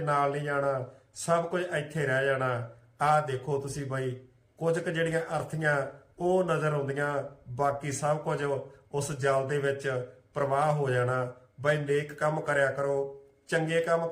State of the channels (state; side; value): identical; both; correlation 1.00